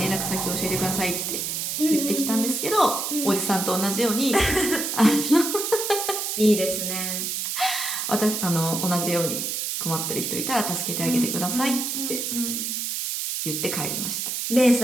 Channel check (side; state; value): right; noise; hiss, 2 dB below the sound